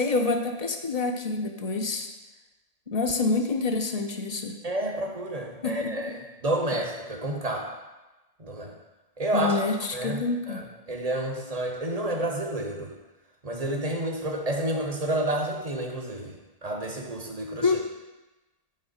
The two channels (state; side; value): late; left; 1.8 ms